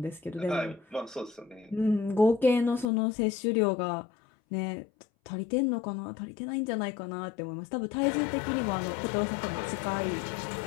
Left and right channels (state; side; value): drops out; right; at 2.9 s